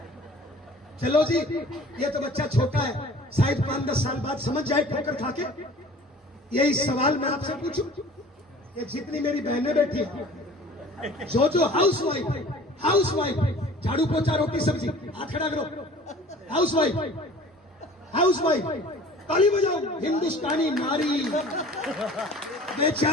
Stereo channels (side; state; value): both; normal; correlation 0.46